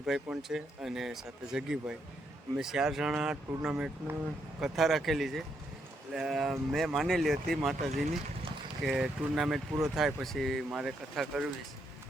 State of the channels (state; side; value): normal; both; correlation 0.77